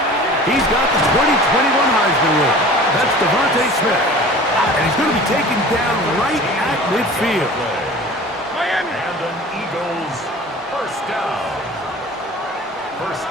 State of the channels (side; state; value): both; normal; correlation 0.42